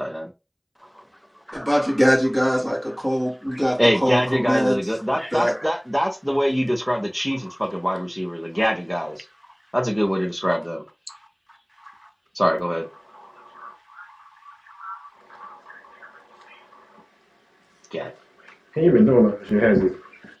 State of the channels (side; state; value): both; identical; correlation 1.00